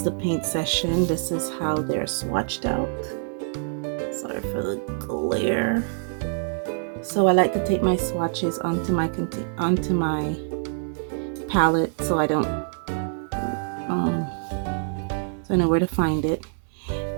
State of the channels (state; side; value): silent; left; 61 dB below the other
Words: the paint session. This is how they're swatched out. Sorry for the glare. So I like to take my swatches onto my palette so I don't so I know where to find it.